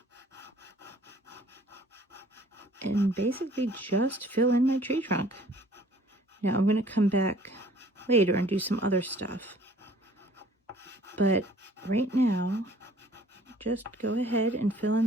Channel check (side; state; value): both; normal; correlation 0.54